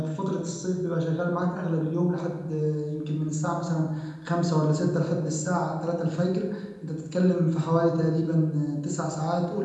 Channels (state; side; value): identical; both; correlation 1.00